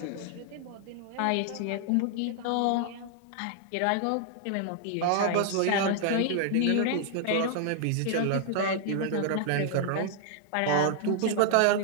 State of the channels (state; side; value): different; both; correlation 0.00